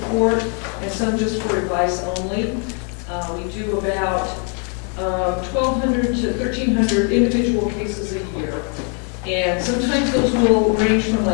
court and some just for advice only. We do about 1,200 to 1,300 individual cases a year. And sometimes those will range from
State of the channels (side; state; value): right; quieter; 39.9 dB